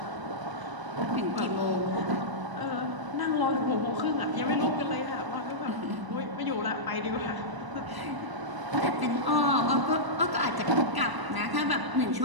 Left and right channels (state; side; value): late; left; 1.0 ms